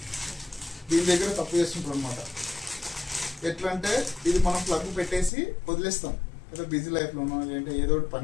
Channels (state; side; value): drops out; right; at 5.3 s